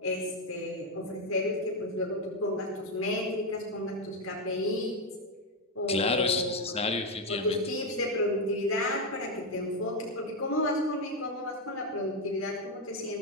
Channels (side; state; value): both; normal; correlation 0.06